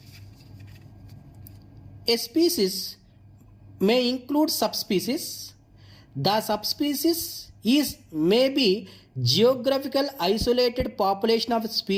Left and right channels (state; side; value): identical; both; correlation 1.00